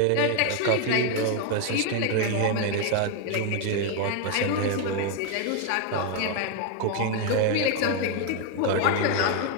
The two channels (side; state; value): both; different; correlation 0.01